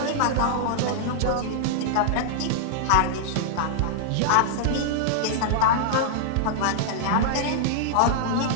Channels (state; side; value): different; both; correlation -0.01